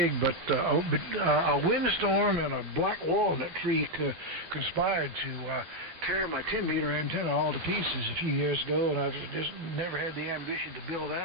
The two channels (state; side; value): late; left; 12 ms